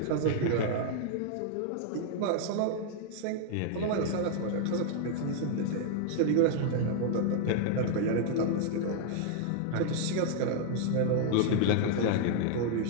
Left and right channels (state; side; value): different; both; correlation -0.01